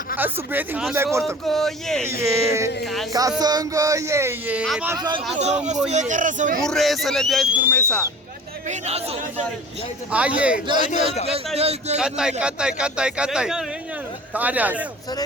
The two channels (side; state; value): both; normal; correlation 0.41